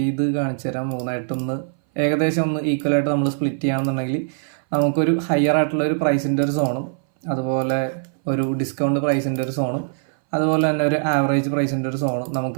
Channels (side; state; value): left; silent; 60 dB below the other